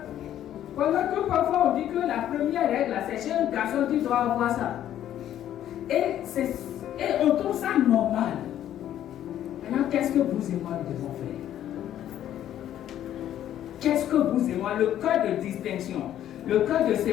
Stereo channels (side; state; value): right; quieter; 11.4 dB